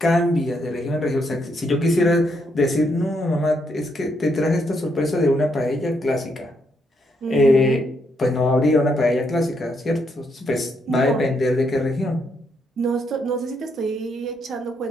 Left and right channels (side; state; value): both; normal; correlation 0.76